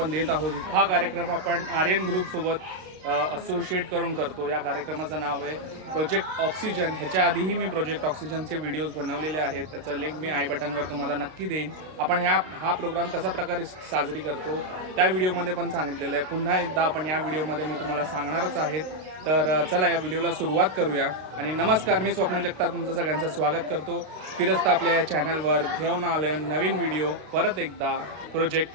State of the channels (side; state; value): left; late; 32 ms